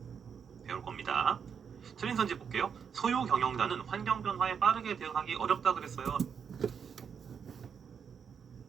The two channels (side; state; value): left; quieter; 7.0 dB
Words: 배울 겁니다. 틀린 선지 볼게요. 소유 경영자는 환경 변화에 빠르게 대응하기 어렵다 그랬어요.